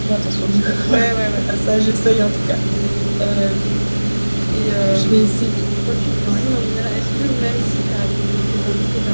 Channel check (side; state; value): both; inverted; correlation -1.00